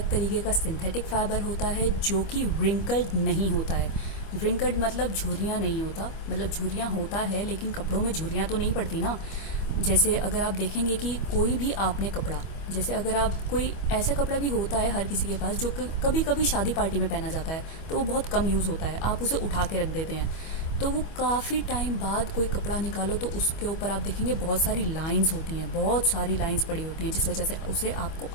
तरीके का सिंथेटिक फाइबर होता है जो कि रिंकल्ड नहीं होता है। रिंकल्ड मतलब झुर्रियाँ नहीं होता, मतलब झुर्रियाँ होता है लेकिन कपड़ों में झुर्रियाँ तो नहीं पड़ती ना। जैसे अगर आप देखेंगे कि कोई भी आपने कपड़ा, जैसे अगर आप कोई ऐसा कपड़ा भी होता है हर किसी के पास जो कभी कभी शादी पार्टी में पहना जाता है, तो वो बहुत कम यूज़ होता है, आप उसे उठा के रख देते हैं। तो वो काफ़ी टाइम बाद कोई कपड़ा निकालो तो उसके ऊपर आप देखेंगे बहुत सारी लाइंस होती हैं, बहुत सारी लाइंस पड़ी होती हैं, जिस वजह से उसे आपको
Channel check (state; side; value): late; right; 25 ms